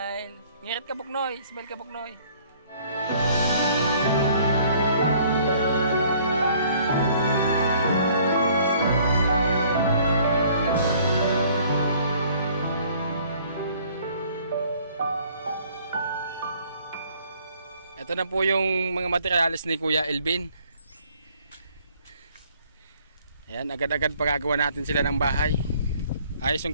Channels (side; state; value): both; inverted; correlation -0.58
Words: Ngirit ka, Buknoy. Smile ka, Buknoy. Ito na po yung mga materials ni Kuya Elvin. Ayan, agad-agad pagagawa natin sila ng bahay. Ayos